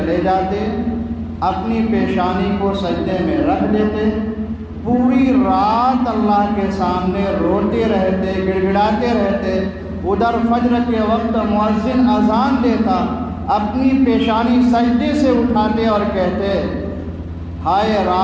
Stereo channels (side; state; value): both; identical; correlation 1.00